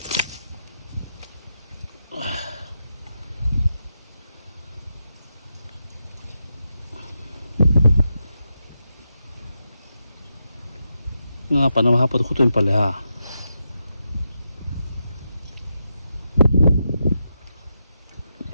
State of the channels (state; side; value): inverted; both; correlation -0.86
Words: Ngapa nama apa tu kutu yang paling ha?